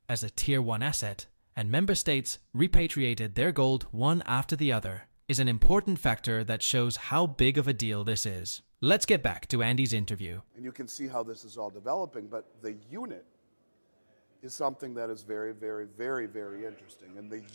as a Tier 1 asset, and member states repatriated their gold one after the other, is an important factor that shows how big of a deal this is. Let's get back to Andy's interview. And you can see how this is all developing, but the unit is something that is very, very, very, very interesting. And the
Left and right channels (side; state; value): both; inverted; correlation -1.00